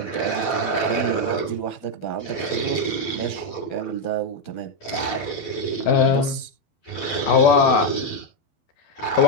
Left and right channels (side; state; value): right; late; 12 ms